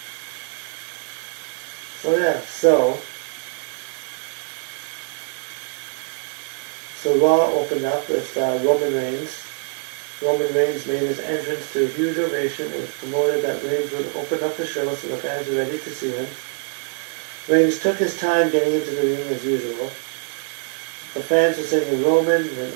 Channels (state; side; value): quieter; left; 37.8 dB